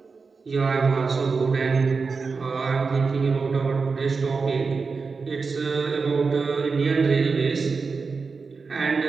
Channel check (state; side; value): quieter; left; 4.7 dB